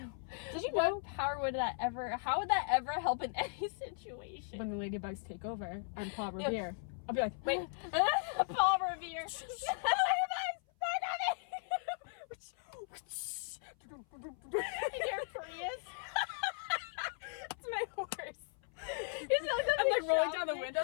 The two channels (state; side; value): silent; right; 53 dB below the other